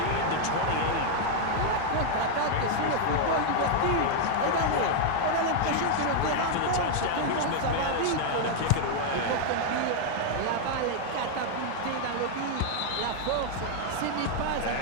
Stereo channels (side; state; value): both; different; correlation 0.00